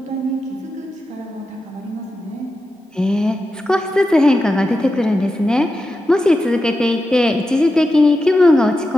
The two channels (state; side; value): normal; both; correlation 0.90